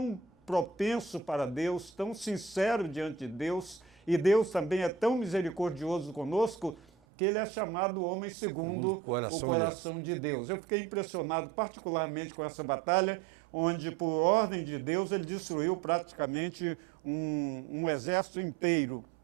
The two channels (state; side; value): drops out; left; at 6.9 s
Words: propenso para Deus, tão sincero diante de Deus, e Deus também é tão misericordioso conosco, que ele é chamado homem segundo o coração de Deus. Eu fiquei impressionado particularmente com essa batalha, onde, por ordem de Deus, ele destruiu praticamente um exército inteiro.